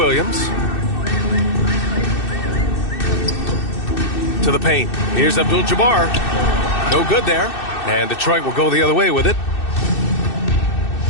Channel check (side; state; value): right; late; 2.6 ms